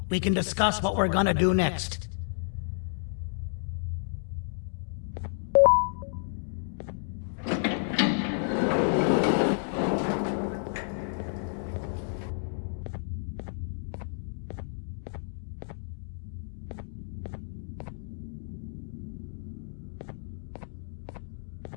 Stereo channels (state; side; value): silent; right; digital silence